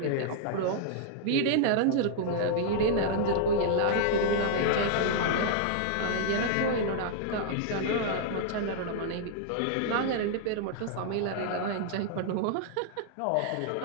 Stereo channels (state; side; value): different; both; correlation -0.01